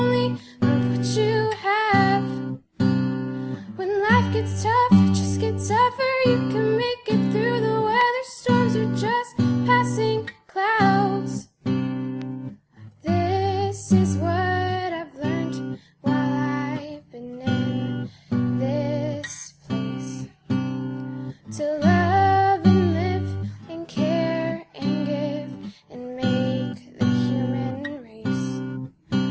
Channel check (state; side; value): identical; both; correlation 1.00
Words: of what you have. When life gets tough, just get tougher, you can make it through the weather. Storms are just passing clouds. This is what I've learned while I've been in this place. To love and live and care and give and make the human race